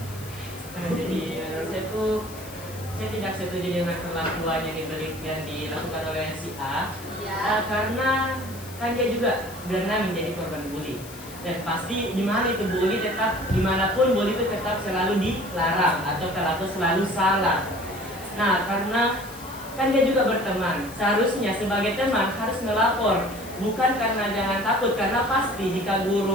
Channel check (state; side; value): noise; left; hiss, 17 dB below the sound